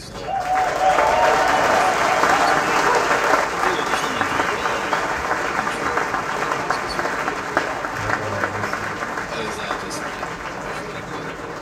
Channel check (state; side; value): identical; both; correlation 1.00